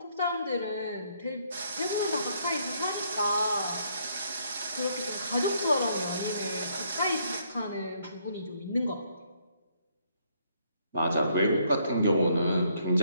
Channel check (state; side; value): inverted; both; correlation -0.70